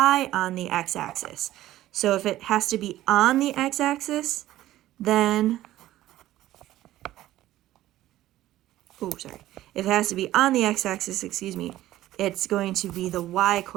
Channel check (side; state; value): left; quieter; 14.6 dB